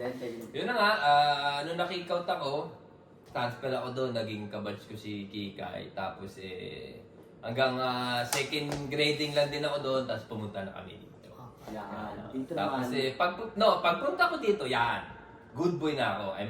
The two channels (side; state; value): both; identical; correlation 1.00